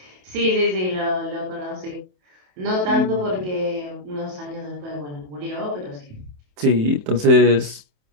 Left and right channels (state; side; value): late; left; 27 ms